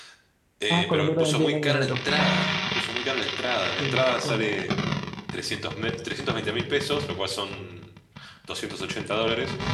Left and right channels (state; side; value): identical; both; correlation 1.00